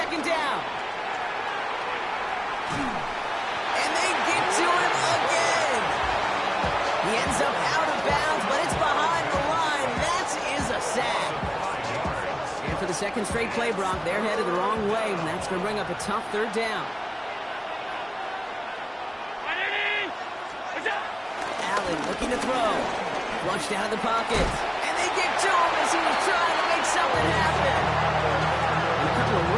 down. And they get to him again. He ends up out of bounds, but it's behind the line. That is a sack. And for the second straight play, Brock, they're headed the wrong way, and that's going to bring up a tough 3rd down. Allen looking to throw. Flushed out of the pocket. And they get to him as he was trying to make something happen. And a couple of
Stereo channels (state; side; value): identical; both; correlation 1.00